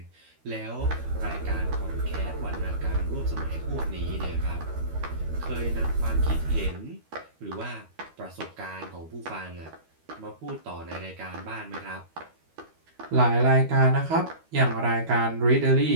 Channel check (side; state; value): left; late; 13 ms